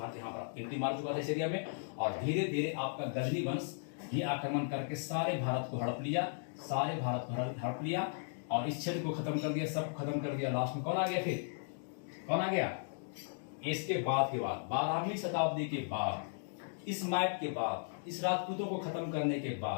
यहाँ पर एंट्री मार चुका था इस एरिया में, और धीरे धीरे आपका गजनी वंश ये आक्रमण करके सारे भारत को हड़प लिया, सारे भारत को हड़प लिया और इस क्षेत्र को खत्म कर दिया, सब खत्म कर दिया। लास्ट में कौन आ गया? फिर कौन आ गया? इसके बाद के बाद 12वीं शताब्दी के बाद, इस मैप के बाद, इस राजपूतों को खत्म करने के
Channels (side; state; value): right; silent; digital silence